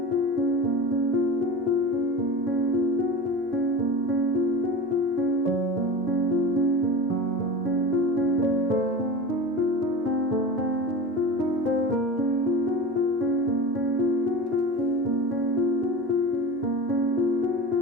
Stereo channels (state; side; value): normal; both; correlation 0.30